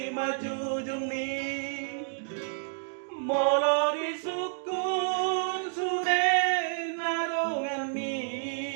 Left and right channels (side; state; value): left; silent; digital silence